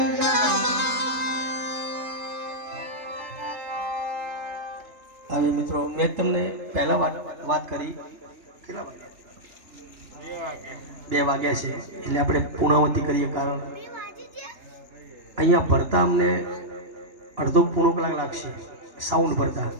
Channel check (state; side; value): late; left; 3.3 ms